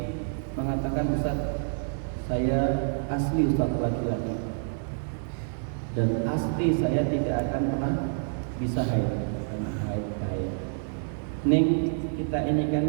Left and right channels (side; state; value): left; silent; digital silence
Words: mengatakan, Ustaz, saya asli Ustaz laki-laki dan asli saya tidak akan pernah bisa haid. Ning kita ini kan